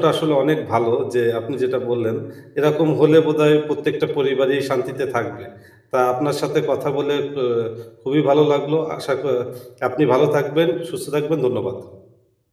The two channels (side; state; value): both; identical; correlation 1.00